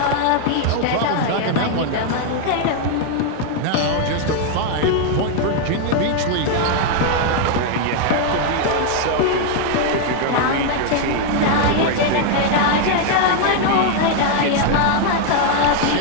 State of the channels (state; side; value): different; both; correlation 0.00